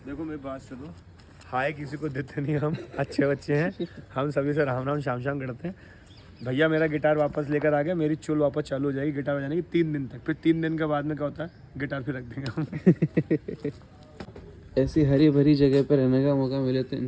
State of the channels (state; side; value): identical; both; correlation 1.00